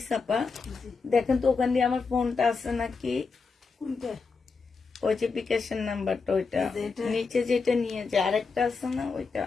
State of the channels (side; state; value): right; quieter; 4.7 dB